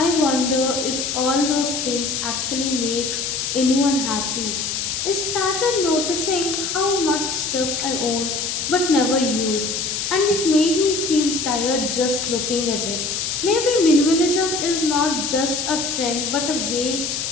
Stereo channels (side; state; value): left; noise; hiss, 2 dB below the sound